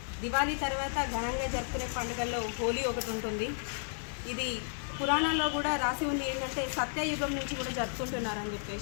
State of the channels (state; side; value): silent; right; 56 dB below the other